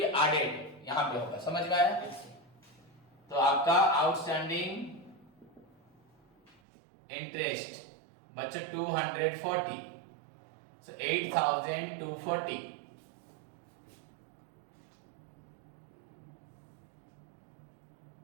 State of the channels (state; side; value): drops out; left; at 6.5 s